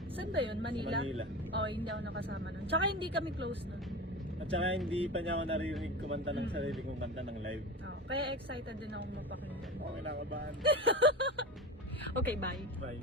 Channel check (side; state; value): both; normal; correlation 0.28